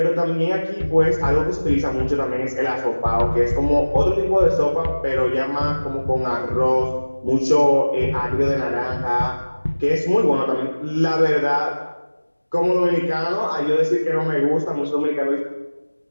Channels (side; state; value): both; inverted; correlation -1.00